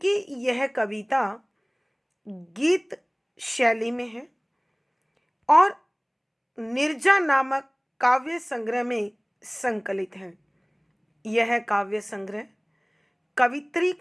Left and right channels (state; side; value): identical; both; correlation 1.00